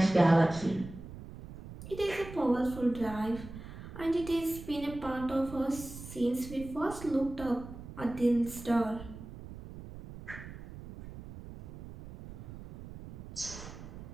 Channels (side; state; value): right; noise; rumble, 13 dB below the sound